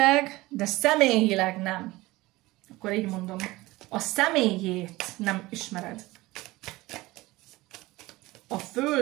de személyileg nem. Akkor így mondom. A személyét nem ismered. A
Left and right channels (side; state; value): left; quieter; 19.7 dB